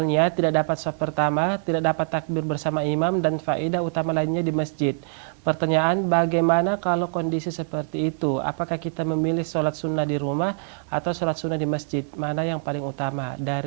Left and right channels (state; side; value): silent; left; digital silence